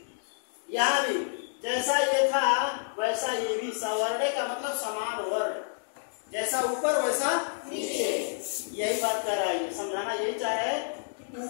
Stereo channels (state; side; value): silent; right; digital silence